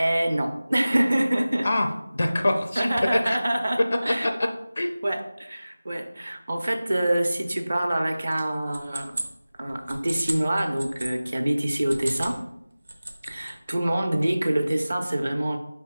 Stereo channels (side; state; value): both; inverted; correlation -0.97